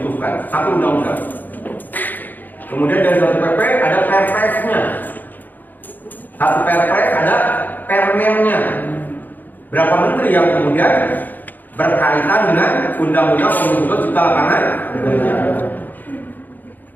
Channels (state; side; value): late; right; 0.086 ms